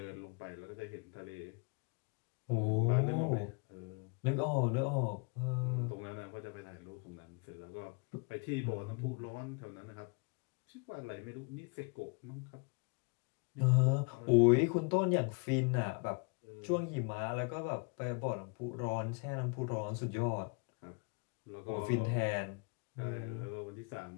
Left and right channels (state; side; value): quieter; right; 34.1 dB